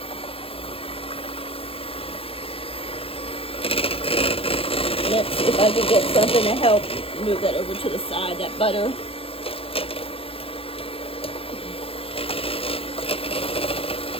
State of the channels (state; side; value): late; right; 0.27 ms